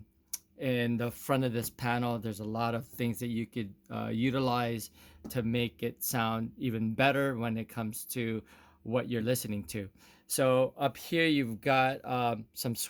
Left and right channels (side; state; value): both; identical; correlation 1.00